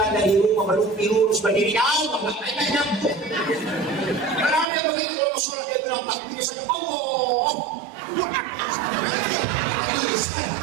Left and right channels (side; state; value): left; drops out; at 4.7 s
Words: dari rumah berlumpi lurus berdiri jauh, makanya nyampe. Karena dia begitu Rasulullah dia bilang takbirnya saja Allah.